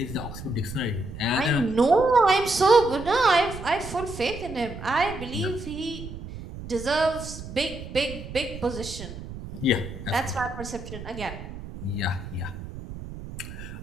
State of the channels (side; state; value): right; noise; rumble, 11 dB below the sound